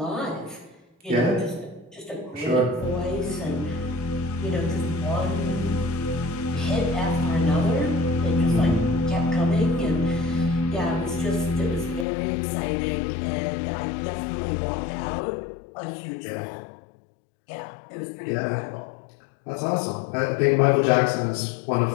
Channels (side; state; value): right; drops out; at 12.1 s